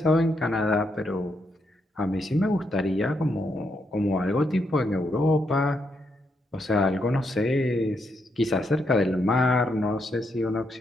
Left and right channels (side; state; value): both; normal; correlation 0.79